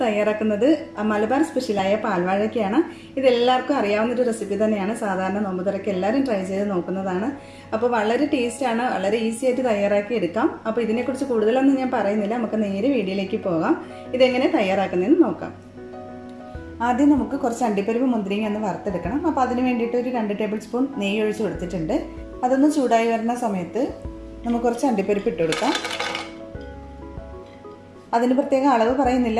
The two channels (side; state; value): both; identical; correlation 1.00